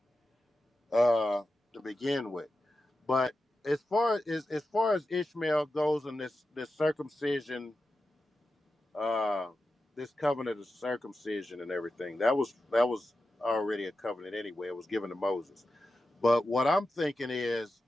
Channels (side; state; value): both; normal; correlation 0.91